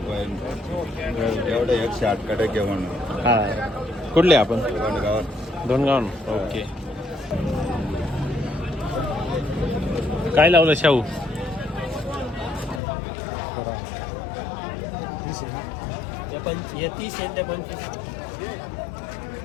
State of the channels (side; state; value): right; drops out; at 12.8 s